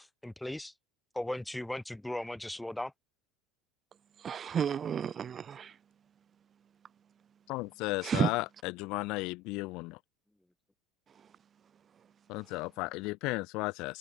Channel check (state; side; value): normal; both; correlation 0.49